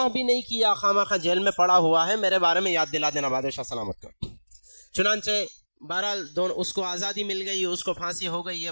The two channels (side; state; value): both; inverted; correlation -1.00